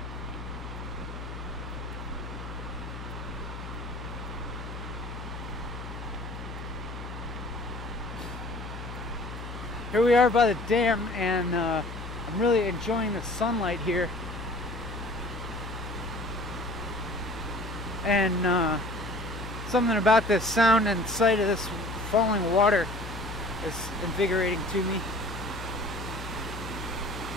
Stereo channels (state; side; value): noise; left; hum, 9 dB below the sound